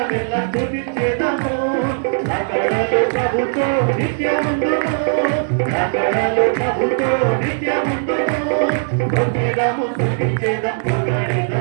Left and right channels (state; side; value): silent; left; digital silence